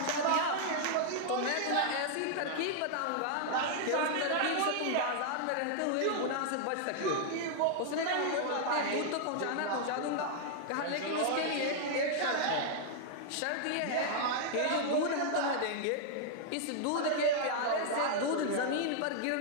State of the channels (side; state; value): both; different; correlation -0.01